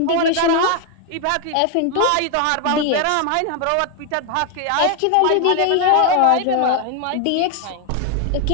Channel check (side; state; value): both; different; correlation 0.01